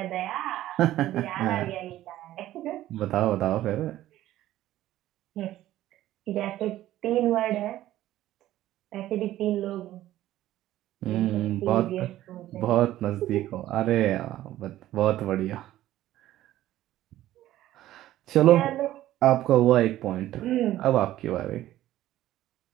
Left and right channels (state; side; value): quieter; left; 14.1 dB